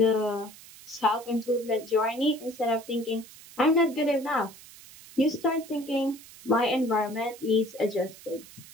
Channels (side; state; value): right; noise; hiss, 19 dB below the sound